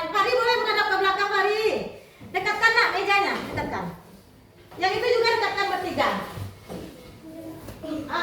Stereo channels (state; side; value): identical; both; correlation 1.00